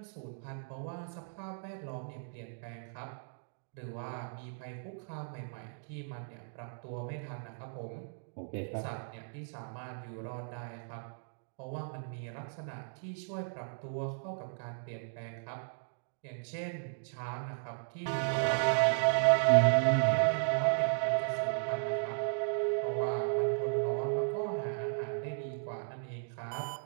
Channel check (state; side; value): silent; left; digital silence